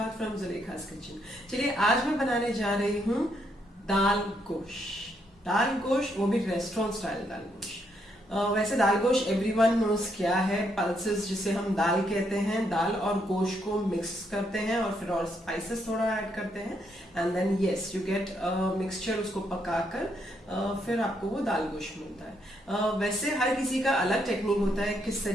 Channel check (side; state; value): both; normal; correlation 0.75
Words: फ्रॉम जुलेखास किचन। चलिए आज मैं बनाने जा रही हूँ दाल गोश। दाल गोश, वो भी रेस्टोरेंट स्टाइल दाल गोश। वैसे दाल गोश एवरीवन नोज क्या है। पल्सेस जिसे हम दाल कहते हैं, दाल और गोश को मिक्स करते हैं और फिर और स्पाइसेस थोड़ा ऐड करते हैं and then yes you get mixture. उसको पकाकर फिर आपको वो दाल गोश मिलता है। वैसे हर किसी का अलग टेक्निक होता है किस